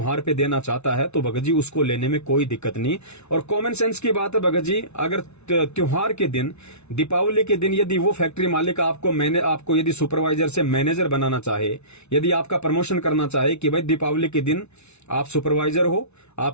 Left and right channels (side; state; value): right; late; 0.81 ms